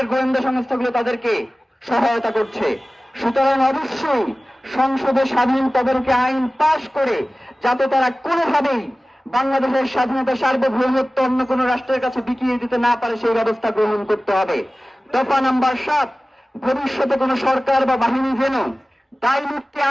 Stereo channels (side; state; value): both; normal; correlation 0.97